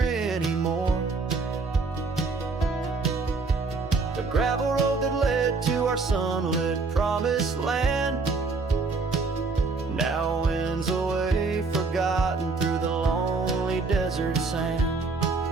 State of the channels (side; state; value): left; quieter; 4.1 dB